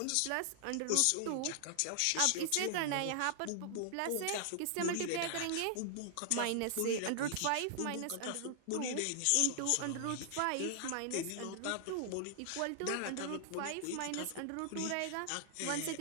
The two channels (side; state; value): both; different; correlation -0.01